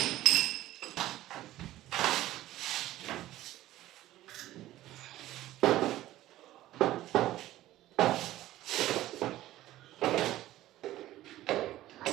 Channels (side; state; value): left; quieter; 15.0 dB